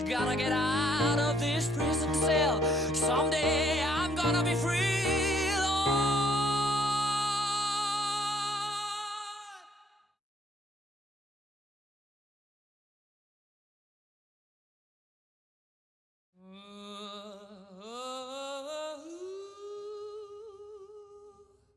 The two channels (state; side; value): normal; both; correlation 0.66